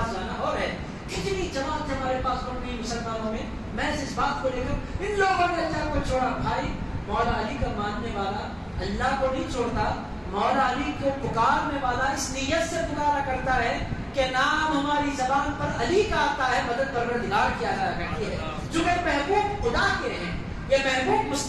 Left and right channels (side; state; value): both; identical; correlation 1.00